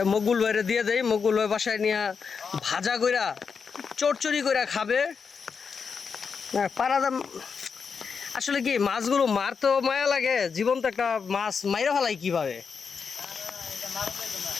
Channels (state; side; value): quieter; right; 5.8 dB